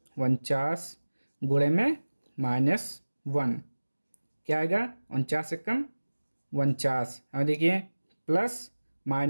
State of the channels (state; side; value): inverted; both; correlation -1.00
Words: 49 गुणे में -1, क्या आएगा, 49 एकम 49। और देखिए प्लस